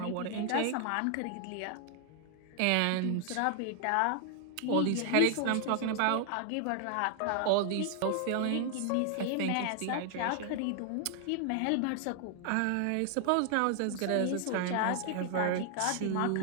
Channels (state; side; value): different; both; correlation 0.00